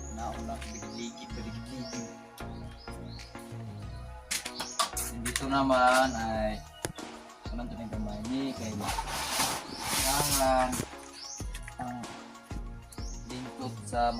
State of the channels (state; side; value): identical; both; correlation 1.00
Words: nauna ligid. Dito naman ay anong ito ng kamay ni kay kailangan ang lingkod sa